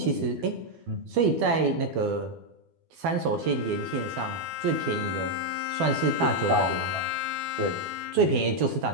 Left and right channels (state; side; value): late; left; 12 ms